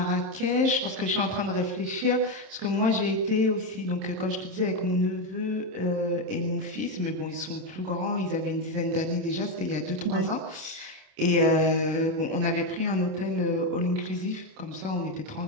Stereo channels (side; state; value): left; late; 27 ms